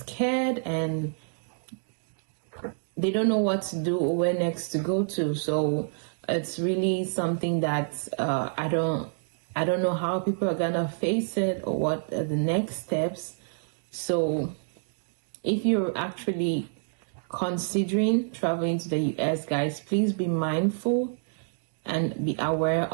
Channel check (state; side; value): silent; left; digital silence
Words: and they don't know what to do or where next to go to. So it's really something that I don't know how people are gonna face it, or what are the next steps. So if you're actually considering traveling to the US, guys, please be mindful and be aware